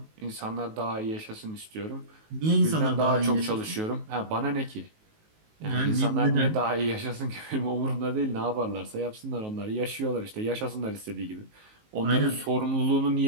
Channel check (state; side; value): late; left; 19 ms